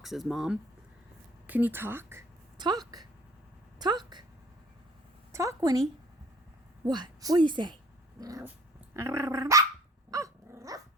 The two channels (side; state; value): both; normal; correlation 0.54